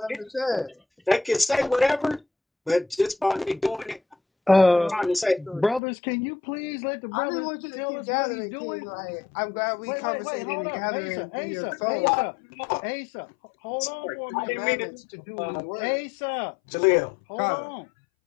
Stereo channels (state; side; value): drops out; right; at 5.8 s